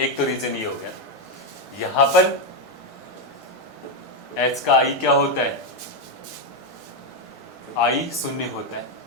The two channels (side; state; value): both; normal; correlation 0.06